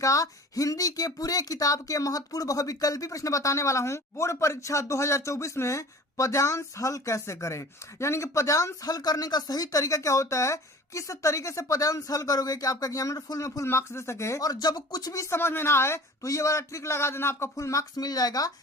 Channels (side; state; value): both; normal; correlation 0.43